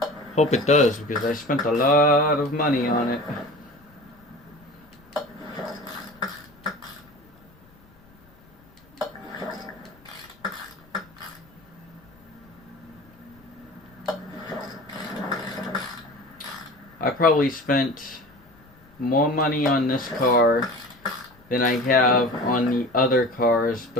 Hope it does, because I spent a lot of money on it. I probably spent more money on this car than I have on the other cars,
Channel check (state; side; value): noise; left; rumble, 28 dB below the sound